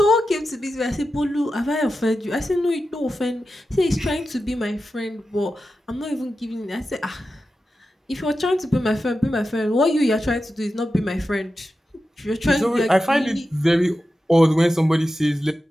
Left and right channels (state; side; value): normal; both; correlation 0.91